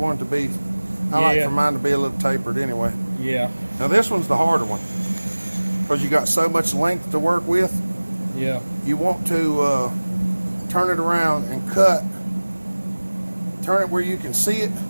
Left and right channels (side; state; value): both; inverted; correlation -1.00